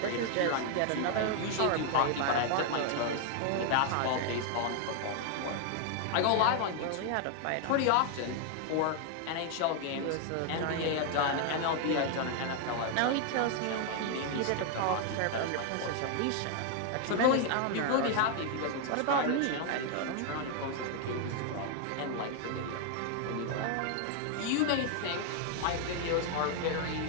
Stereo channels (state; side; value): different; both; correlation 0.00